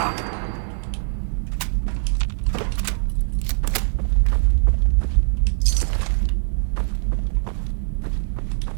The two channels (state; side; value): silent; left; 64 dB below the other